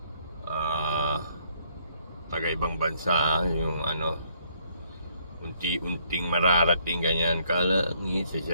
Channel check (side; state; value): both; inverted; correlation -0.67